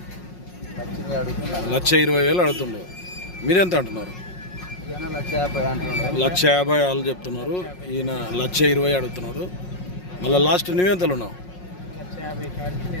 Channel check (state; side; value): late; right; 5.5 ms